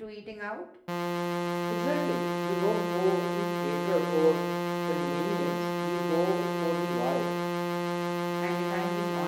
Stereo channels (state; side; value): identical; both; correlation 1.00